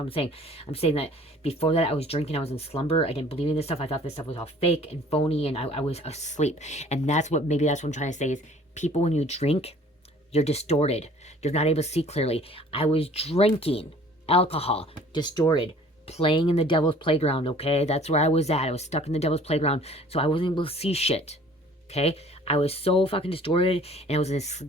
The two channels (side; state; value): both; normal; correlation 0.52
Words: I'm saying. I'm saying that before that, I was drinking. I was in slumber. I didn't believe in this stuff. I thought this stuff was all fake and phony, and I was asleep. And that's what I'm trying to say is, people, when you drink, you're distorted. You're not able to see clearly. I was drinking alcohol, distorted, playing in the devil's playground, okay? That's where I was at. I was stuck in the devil's playground, so I wasn't able to see shit. Okay, I was so fucking distorted, and I was in this